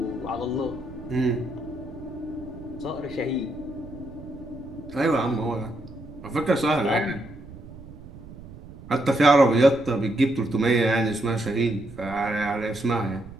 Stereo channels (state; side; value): noise; right; rumble, 16 dB below the sound